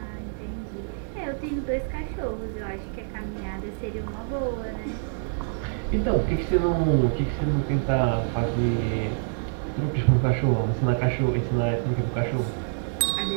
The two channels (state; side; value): silent; left; digital silence